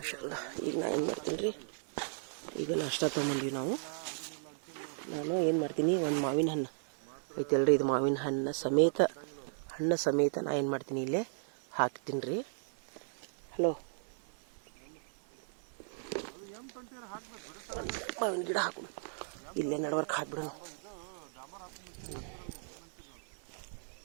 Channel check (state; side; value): silent; left; 54 dB below the other